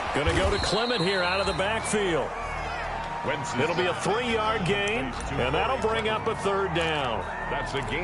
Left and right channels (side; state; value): both; identical; correlation 1.00